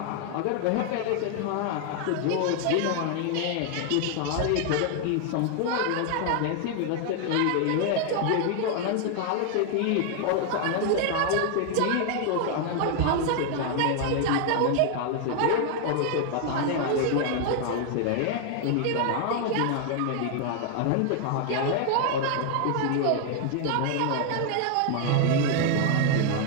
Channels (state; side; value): different; both; correlation 0.00